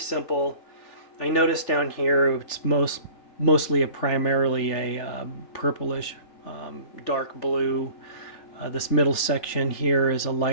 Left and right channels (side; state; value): right; late; 3.4 ms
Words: I noticed down here it's mostly primarily a purplish dark blue. This middle section here is a